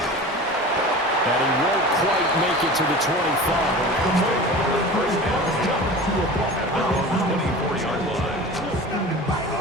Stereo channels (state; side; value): normal; both; correlation 0.36